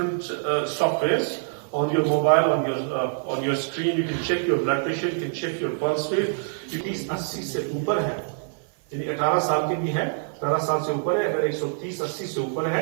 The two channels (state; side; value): silent; left; 57 dB below the other